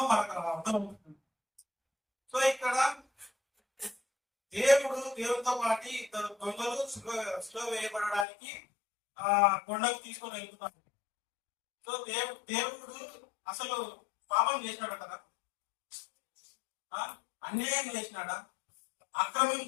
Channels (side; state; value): right; drops out; at 8.2 s